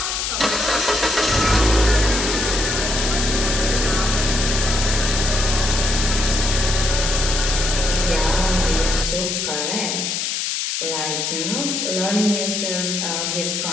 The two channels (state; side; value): noise; left; hiss, 1 dB below the sound